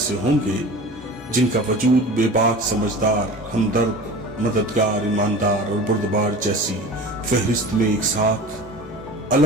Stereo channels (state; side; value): normal; both; correlation 0.37